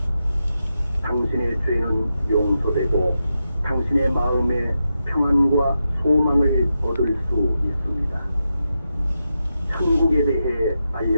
당신의 죄는 용서되고 당신의 마음에 평안과 소망을 얻을 수 있습니다. 천국에 대해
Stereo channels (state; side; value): inverted; both; correlation -0.88